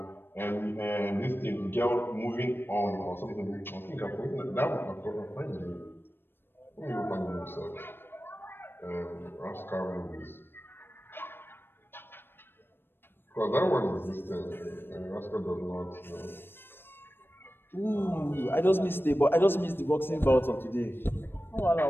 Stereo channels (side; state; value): right; late; 0.10 ms